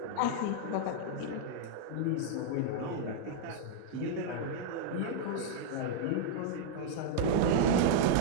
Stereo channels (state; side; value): different; both; correlation -0.01